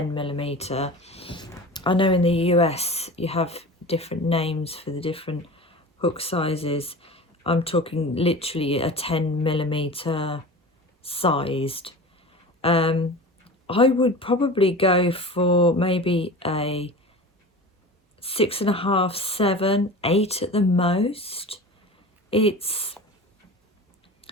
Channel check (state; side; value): normal; both; correlation 0.34